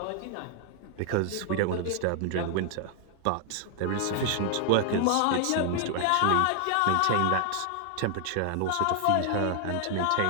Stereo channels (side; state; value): both; different; correlation 0.00